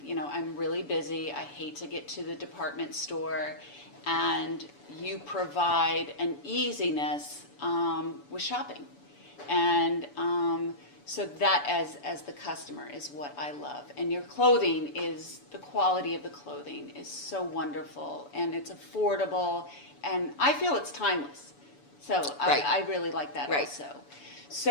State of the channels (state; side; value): late; right; 7.0 ms